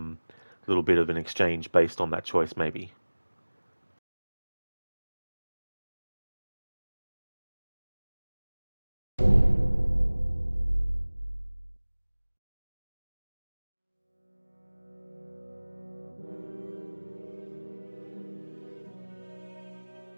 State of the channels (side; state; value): both; inverted; correlation -1.00